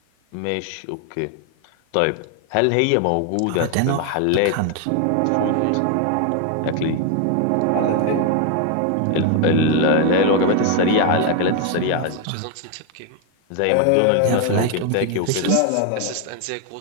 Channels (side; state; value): both; different; correlation 0.01